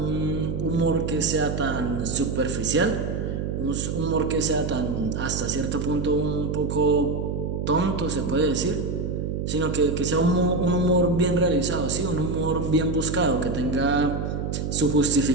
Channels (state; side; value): noise; right; hum, 2 dB below the sound